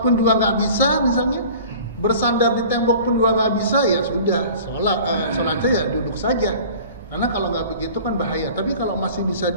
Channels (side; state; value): both; inverted; correlation -0.44